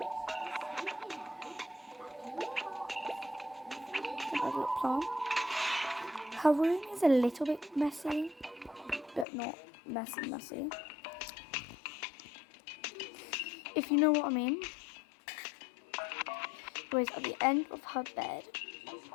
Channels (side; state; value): right; drops out; at 9.2 s